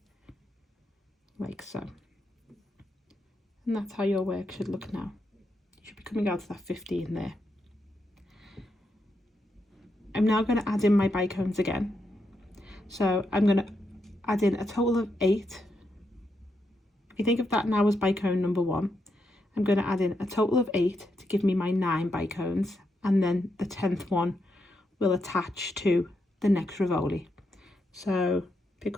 like so. And that's how your work should look now. You should be coming out to that 15 there. I'm now going to add in my bicones again. So I'm going to add in a total of 8. If you think of that now as bicone number 1, I'm going to add in a total of 8 to give me my 9 bicones, and then the 10th one will attach to the next Rivoli. So pick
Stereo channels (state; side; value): normal; both; correlation 0.82